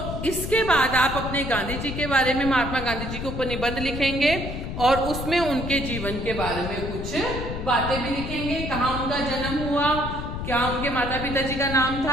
इसके बाद आप अपने गांधी जी के बारे में, महात्मा गांधी जी के ऊपर निबंध लिखेंगे और उसमें उनके जीवन के बारे में कुछ बातें भी लिखेंगे। कहाँ उनका जन्म हुआ, क्या उनके माता पिता जी का नाम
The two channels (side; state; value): left; noise; rumble, 6 dB below the sound